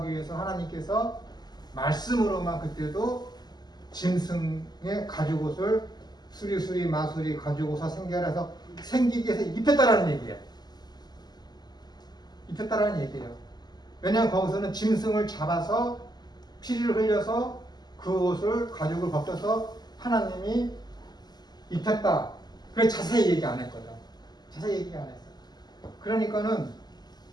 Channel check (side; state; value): right; late; 0.20 ms